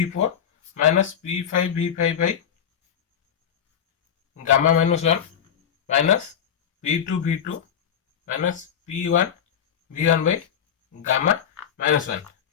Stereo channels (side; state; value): right; quieter; 8.4 dB